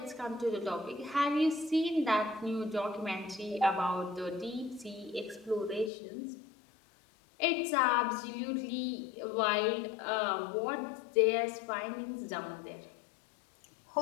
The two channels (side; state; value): right; drops out; at 5.9 s